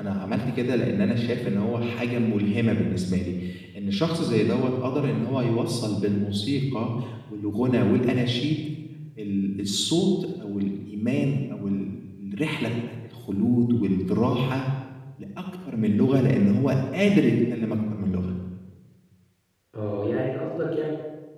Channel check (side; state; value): both; identical; correlation 1.00